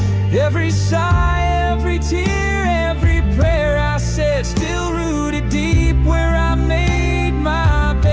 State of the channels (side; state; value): both; identical; correlation 1.00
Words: Every sigh, every tear, every prayer I said, still rooted deep where I made my